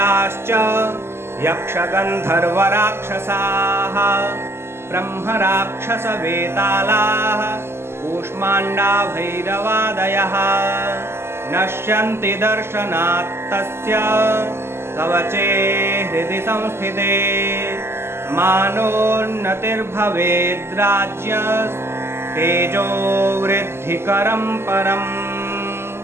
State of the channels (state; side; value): late; left; 0.12 ms